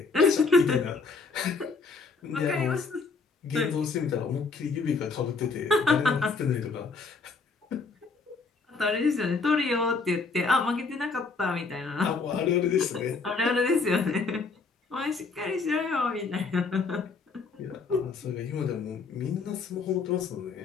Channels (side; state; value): right; quieter; 4.4 dB